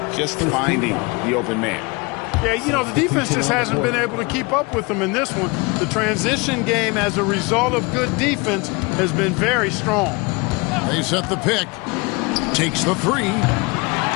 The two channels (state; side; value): quieter; right; 27.2 dB